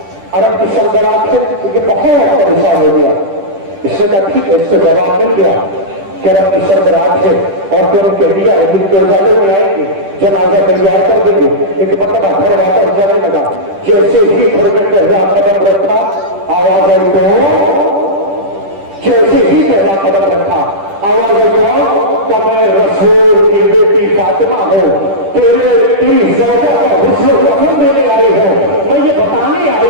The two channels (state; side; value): late; left; 10 ms